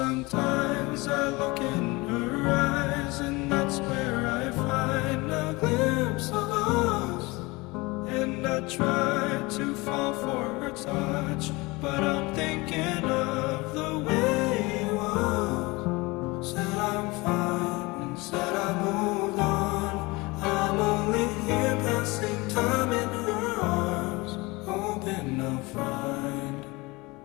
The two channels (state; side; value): quieter; right; 23.7 dB